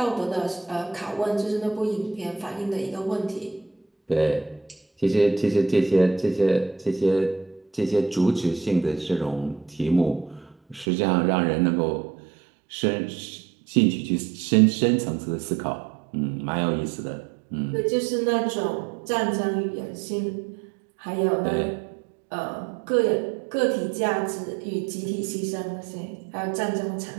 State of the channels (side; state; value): left; drops out; at 10.9 s